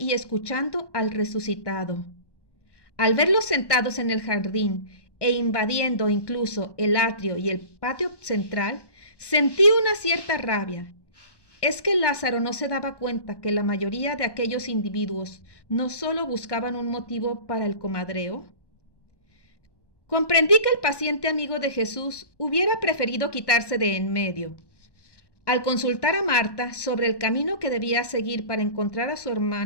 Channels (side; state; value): right; late; 1.2 ms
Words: escuchando al resucitado. Al verlos sentados en el jardín e invadiendo incluso el atrio y el patio central, sentí una cierta rabia. ¿Es que Lázaro no se daba cuenta que la mayoría de aquellos individuos no solo buscaban un motivo para el comadreo? Comprendí que el paciente amigo de Jesús hubiera preferido quitarse de en medio. Al consultar a Marta sobre el camino que debía seguir para encontrar a su